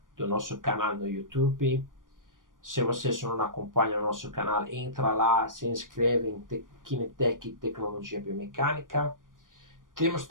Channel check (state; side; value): late; left; 0.89 ms